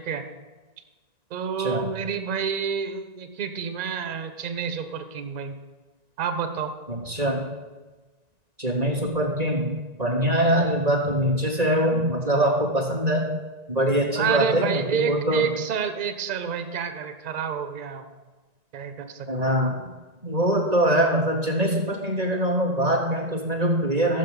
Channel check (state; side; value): late; left; 1.9 ms